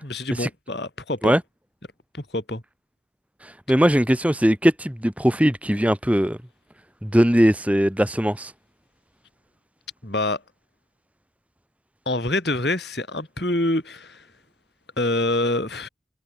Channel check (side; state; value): both; normal; correlation 0.82